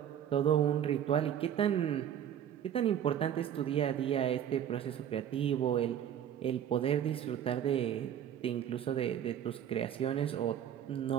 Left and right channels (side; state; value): left; quieter; 9.8 dB